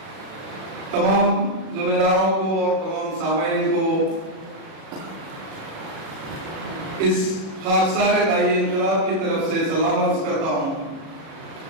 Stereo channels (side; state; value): left; late; 37 ms